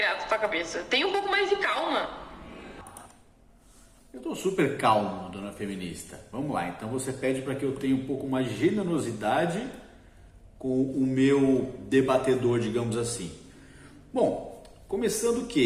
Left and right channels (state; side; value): identical; both; correlation 1.00